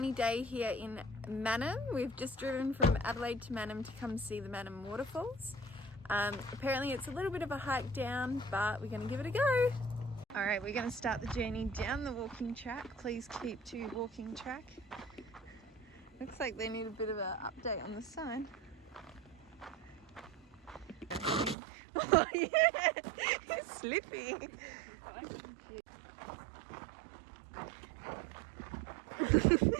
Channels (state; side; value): drops out; left; at 21.6 s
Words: day here in Mannum. We've just driven from Adelaide to Mannum to come see the Mannum Waterfalls. Apparently it's a little bit of a hike down, but we're going to give it a go. Alright, we're going to start the journey down the walking track. Please keep to walking track. Looks like they need a bit of an update on the sign. Oh yeah, it's slippy.